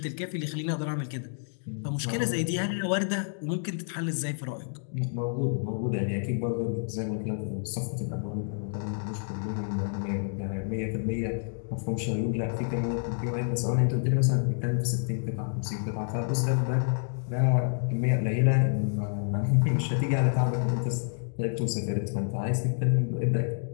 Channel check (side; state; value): right; silent; digital silence